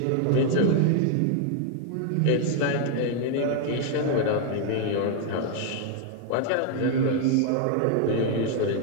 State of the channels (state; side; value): different; both; correlation 0.00